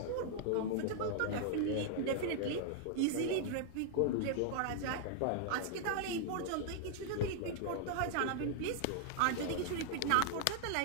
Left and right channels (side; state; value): both; different; correlation -0.01